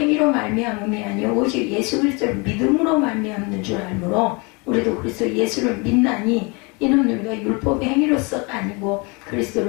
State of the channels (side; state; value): right; quieter; 29.8 dB